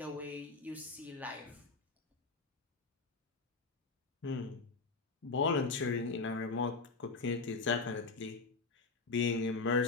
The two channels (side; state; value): right; quieter; 4.1 dB